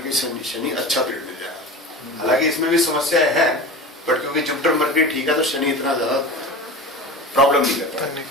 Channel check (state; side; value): normal; both; correlation 0.32